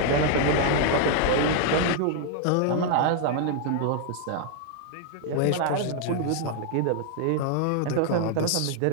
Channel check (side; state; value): both; different; correlation 0.00